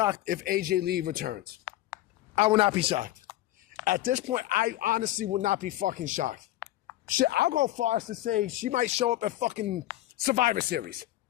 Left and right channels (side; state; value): right; quieter; 15.3 dB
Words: if AJ Lee returns. I will not be shocked. At this point, I honestly will not be fucking shocked. Shit, I'll go far as to say she might show up at fucking Survivor Series.